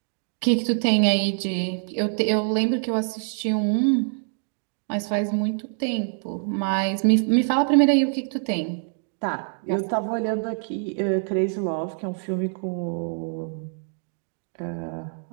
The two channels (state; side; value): silent; left; 55 dB below the other